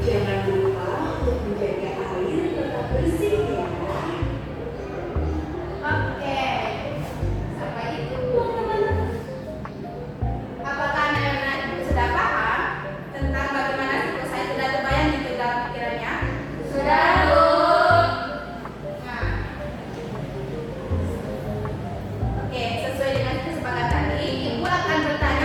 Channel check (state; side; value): identical; both; correlation 1.00